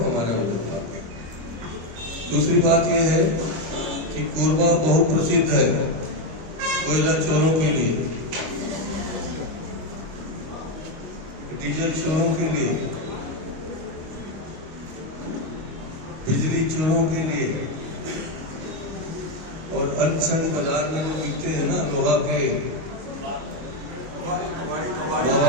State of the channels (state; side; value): late; left; 25 ms